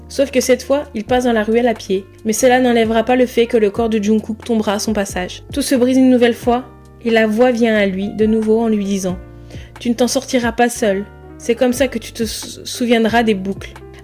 sauf que cette fois, il passe dans la ruelle à pied. Mais cela n'enlèvera pas le fait que le corps de Jungkook tombera à son passage. Tout se brise une nouvelle fois, et la voix vient à lui, de nouveau en lui disant « Tu ne t'en sortiras pas seul. C'est comme ça que tu te souviendras des boucles.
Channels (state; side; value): identical; both; correlation 1.00